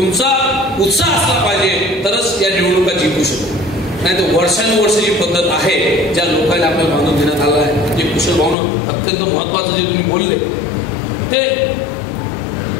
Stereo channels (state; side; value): drops out; right; at 8.6 s